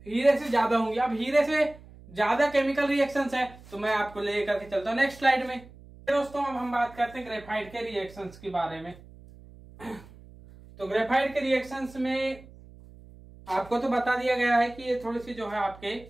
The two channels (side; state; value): right; noise; hum, 21 dB below the sound